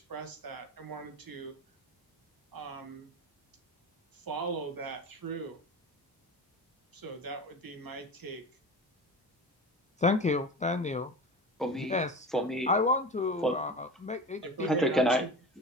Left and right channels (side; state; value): both; normal; correlation 0.31